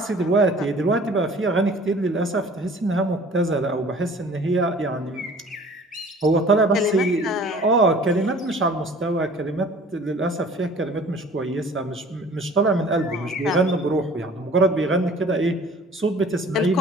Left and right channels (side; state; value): both; normal; correlation 0.49